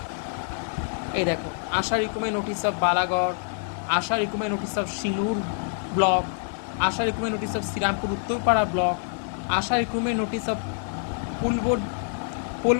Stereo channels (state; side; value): silent; right; 61 dB below the other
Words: এই দেখো, ASHA recommend notice of Balagarh, ASHA recommend notice of Singur block, ASHA recommend notice of Shrirampur Uttarpara block, ASHA recommend notice of